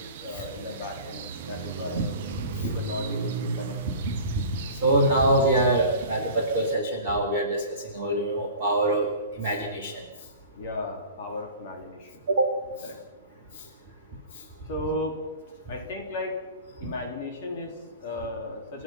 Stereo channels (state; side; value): inverted; both; correlation -0.40